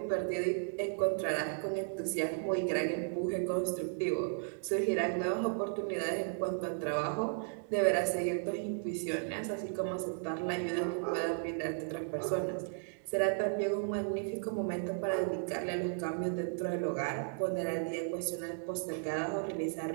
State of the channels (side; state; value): left; silent; digital silence